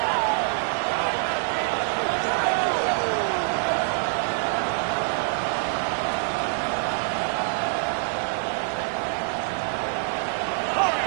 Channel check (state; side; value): silent; left; 61 dB below the other